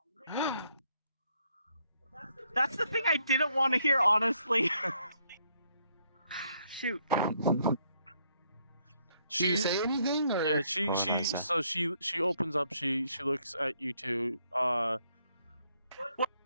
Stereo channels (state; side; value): inverted; both; correlation -0.72